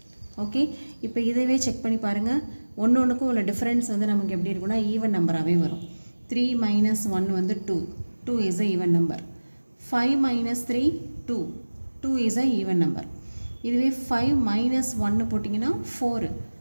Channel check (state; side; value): inverted; both; correlation -1.00